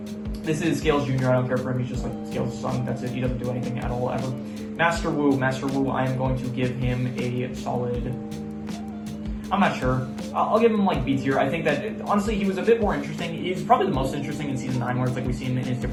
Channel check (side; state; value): both; identical; correlation 1.00